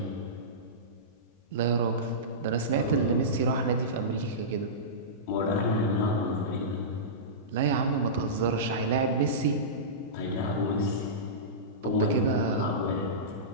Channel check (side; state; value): both; normal; correlation -0.18